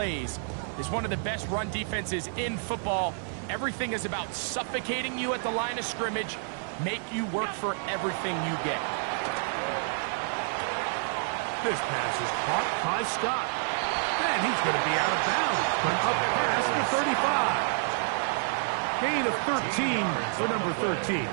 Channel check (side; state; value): left; silent; 59 dB below the other